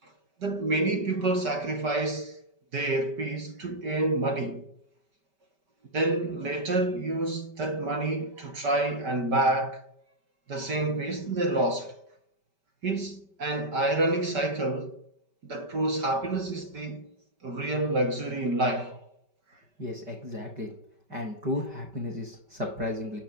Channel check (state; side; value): late; left; 5.2 ms